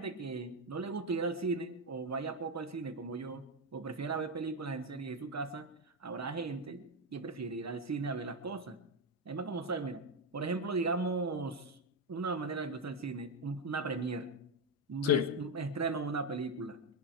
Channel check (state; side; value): normal; both; correlation 0.08